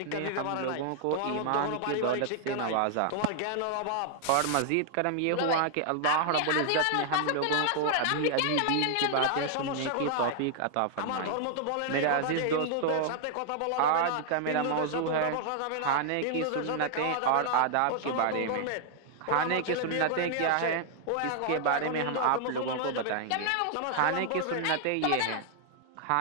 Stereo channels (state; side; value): different; both; correlation -0.01